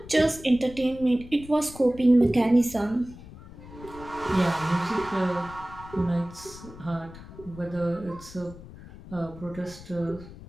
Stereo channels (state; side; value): noise; left; rumble, 17 dB below the sound